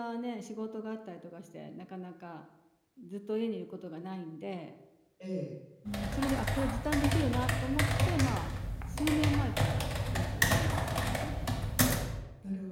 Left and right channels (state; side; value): identical; both; correlation 1.00